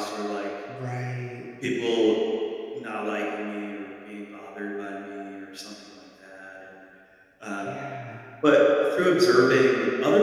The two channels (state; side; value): identical; both; correlation 1.00